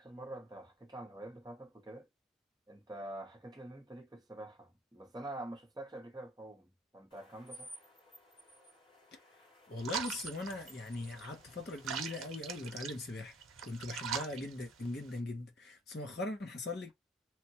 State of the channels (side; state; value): both; normal; correlation 0.56